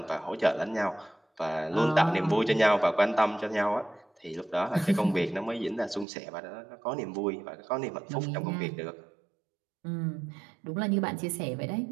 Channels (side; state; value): left; drops out; at 6.1 s